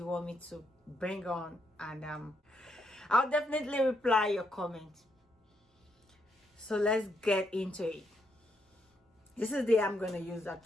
want me to bring on, and I'll definitely reply your comment. So let's get into it. This is the I'm going to use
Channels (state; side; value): normal; both; correlation 0.78